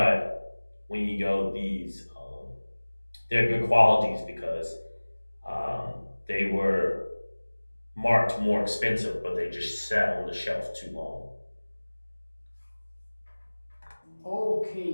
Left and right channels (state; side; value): inverted; both; correlation -1.00